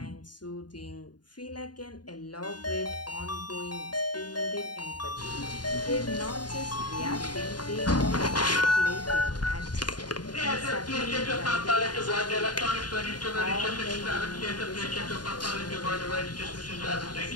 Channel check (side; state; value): right; late; 0.70 ms